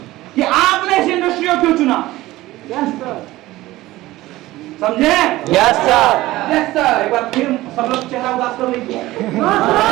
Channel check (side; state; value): left; quieter; 17.4 dB